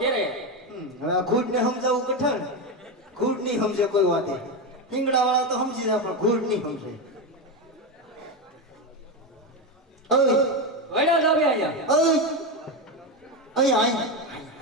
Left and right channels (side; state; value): both; normal; correlation 0.13